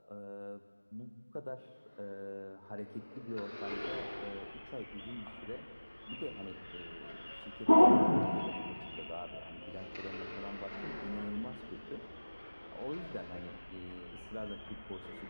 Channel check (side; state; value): both; inverted; correlation -1.00